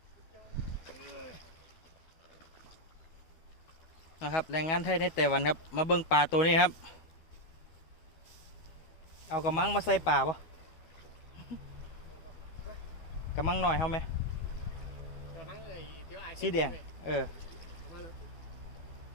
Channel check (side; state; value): right; late; 12 ms